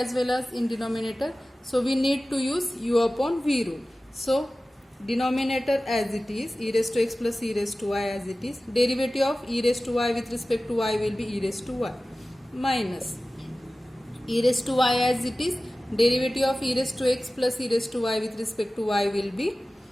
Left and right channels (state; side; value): normal; both; correlation 0.96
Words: well as in denominator, so we need to use u upon v rule. So denominator as it is, e raised to x plus e raised to y as it is, derivative of e raised to y with respect to y will be e raised to y minus e raised to y as it is, derivative of e raised to x plus e raised to y with respect to y will be